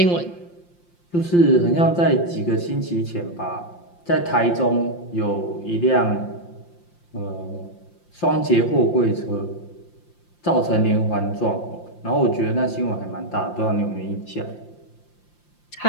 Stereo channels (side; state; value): right; late; 5.7 ms